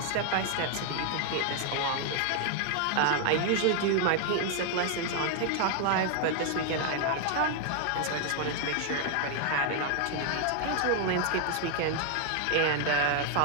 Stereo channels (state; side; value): different; both; correlation 0.00